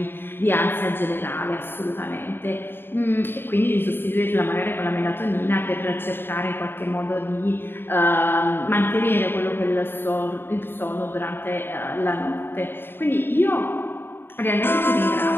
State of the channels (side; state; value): right; late; 0.10 ms